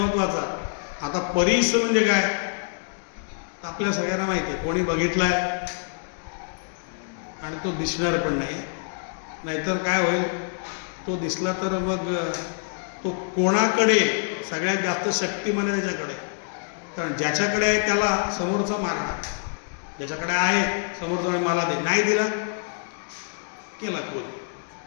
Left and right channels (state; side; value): silent; right; 61 dB below the other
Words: आता परीस म्हणजे काय? आपल्या सगळ्यांना माहिती आहे, कोणी बघितलाय आणि तो दिसणार पण नाही. नाहीतर काय होईल, तो दिसला तर मग तो कोणाकडे सगळ्यात जास्त शक्तिमान आहे? त्याच्याकडे. कारण ज्याच्याकडे आहे त्याला समोरचा मारणार, ज्याच्याकडे आहे समोरचा मला दे, नाही दिला केला